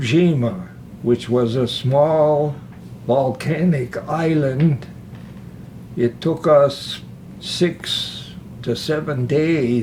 Jima, which was a small volcanic island. It took us 6 to 7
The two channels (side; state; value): both; identical; correlation 1.00